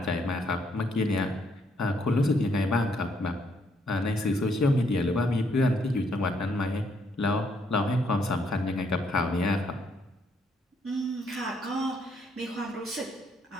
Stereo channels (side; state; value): both; normal; correlation 0.71